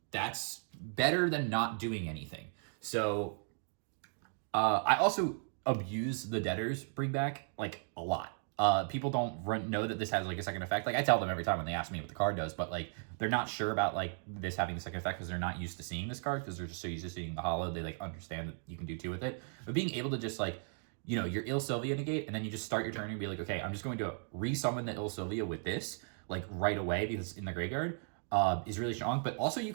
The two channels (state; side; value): silent; left; 54 dB below the other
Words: that's better than not doing anything. So I also abuse the Debtors bring back like a lot. People don't know that this has like a second effect. Like I tell them every time when they ask me what the card does, but like they're not sure about like this having the second effect because they're not used to seeing this card, because they're just so used to seeing the hollow. They like understand that you can do 2 with it. But being able to just like, you know, your Il Sylvia negate, and then you just start your turn and be like, okay, I'm just going to resummon the Il Sylvia with this like right away because it's in the graveyard, is really strong. But also you